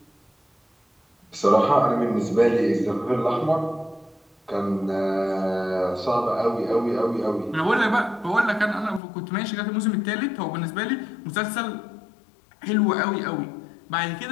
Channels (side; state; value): right; drops out; at 9.0 s